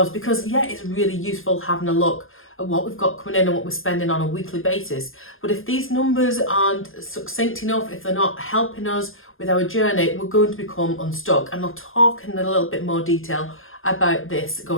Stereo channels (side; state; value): right; late; 0.60 ms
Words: because yeah, it's really useful having a look at what we've got coming in and what we're spending on a weekly basis. But if these numbers aren't succinct enough, if they're not helping us with our journey, we're going to become unstuck. And I'll talk in a little bit more detail about this